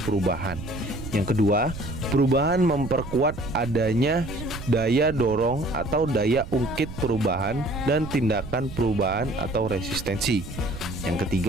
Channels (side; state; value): right; noise; rumble, 11 dB below the sound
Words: Yang kedua, perubahan memperkuat adanya daya dorong atau daya ungkit perubahan dan tindakan perubahan atau resistensi. Yang